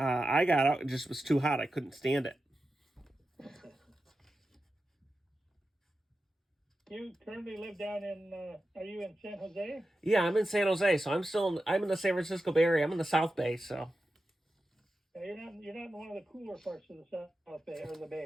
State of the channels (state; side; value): normal; both; correlation 0.91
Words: got out, it just was too hot. I couldn't stand it. You currently live down in, are you in San Jose? Yeah, I'm in San Jose, so I'm in the San Francisco Bay Area. I'm in the South Bay, so. You're not in one of the cooler parts of the South Bay or the